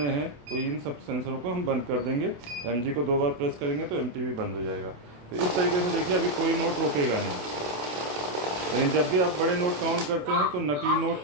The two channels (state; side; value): late; left; 28 ms